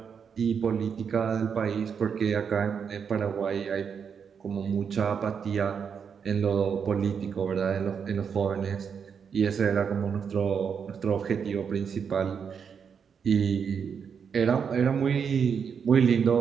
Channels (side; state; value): left; quieter; 6.8 dB